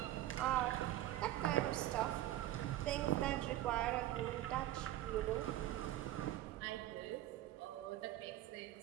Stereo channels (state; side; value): quieter; left; 14.0 dB